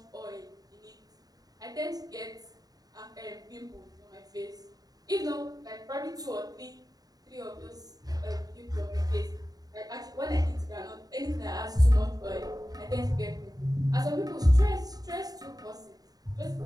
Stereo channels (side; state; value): left; late; 0.18 ms